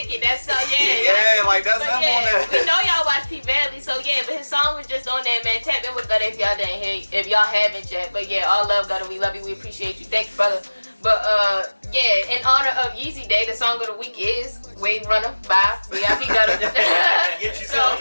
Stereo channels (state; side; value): inverted; both; correlation -1.00